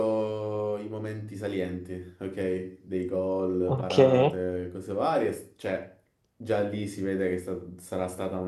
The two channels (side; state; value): both; identical; correlation 1.00